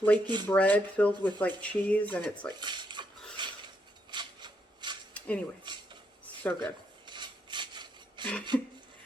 bread filled with like cheese, and it's like, anyway, so good.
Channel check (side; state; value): both; normal; correlation 0.77